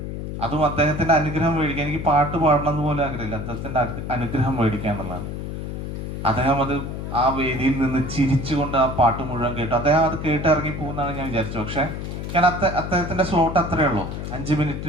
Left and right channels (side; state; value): left; noise; hum, 6 dB below the sound